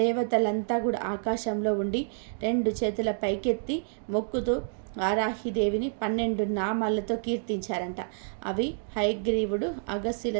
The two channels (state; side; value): silent; left; digital silence